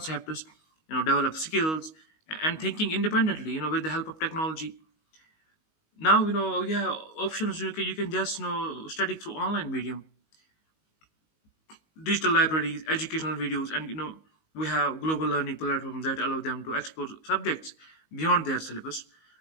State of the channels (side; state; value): right; late; 19 ms